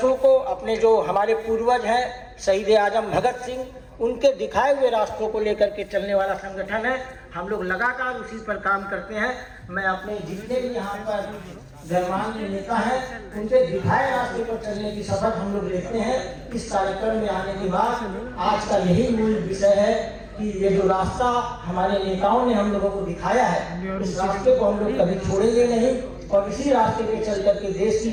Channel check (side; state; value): both; identical; correlation 1.00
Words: को, अपने जो हमारे पूर्वज हैं शहीद आजम भगत सिंह, उनके दिखाए हुए रास्तों को लेकर के चलने वाला संगठन है। हम लोग लगातार उसी पर काम करते हैं। मैं अपने जितने भी यहाँ पर गणमान्य नेता हैं, उनके दिखाए रास्ते पर चलने की शपथ हम लोग लेते हैं। इस कार्यक्रम में आने के बाद आज का यही मूल विषय है कि ये जो रास्ता हमारे नेताओं ने हम लोगों को दिखाया है, इस रास्ते को हम लोग कभी छोड़ेंगे नहीं, और इसी रास्ते पे चल करके देश